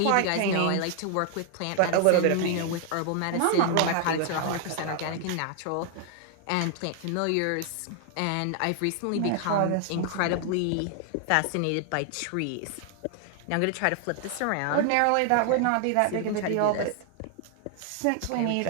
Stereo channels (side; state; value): both; different; correlation 0.00